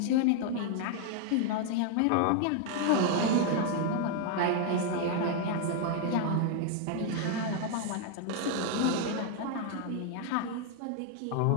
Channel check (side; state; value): both; different; correlation 0.00